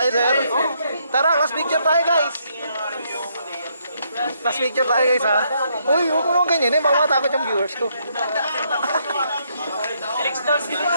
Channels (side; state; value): both; inverted; correlation -0.74